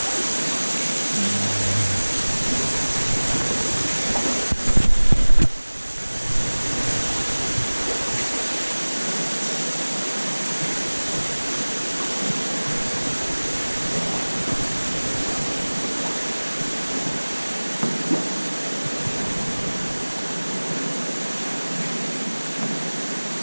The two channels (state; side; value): inverted; both; correlation -1.00